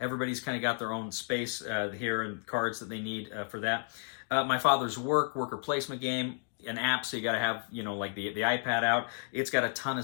kind of got their own space here and cards that they need for that. My Father's Worker placement game, an app, so you got to have, you know, like the iPad out. It's got a ton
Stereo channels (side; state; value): right; silent; 56 dB below the other